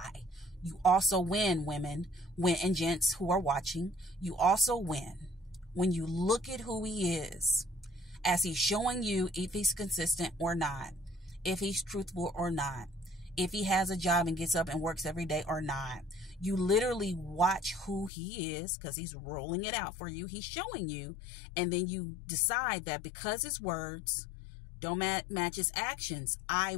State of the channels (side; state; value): right; drops out; at 18.1 s